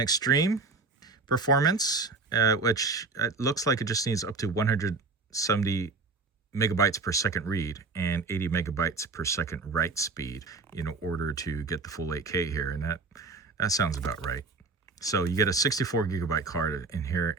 performance, which looks like it just needs up to 170 megabytes per second read and 80 megabytes per second write speed in order to get the full 8K here. And that sounds about right. So you get a 64 gigabyte card in here.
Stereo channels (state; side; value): quieter; left; 4.0 dB